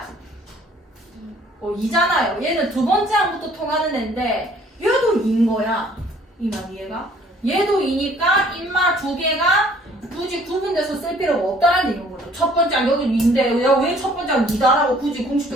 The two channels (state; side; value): normal; both; correlation 0.57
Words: 2잖아요. 얘는 두 번째 항부터 통하는 애인데 얘도 2인 거야. 이만 이해가? 얘도 2니까 인마 두 개가 굳이 구분돼서 쓸 필요가 없다는 얘기인 거죠. 첫 번째 항 여기 2인데 왜 첫 번째 항 2다라고 굳이